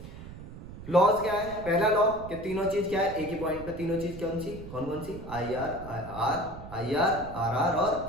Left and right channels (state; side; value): noise; right; rumble, 13 dB below the sound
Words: लॉज क्या है, पहला लॉ कि तीनों चीज क्या है, एक ही पॉइंट पे तीनों चीज कौन कौन सी, आई आर आर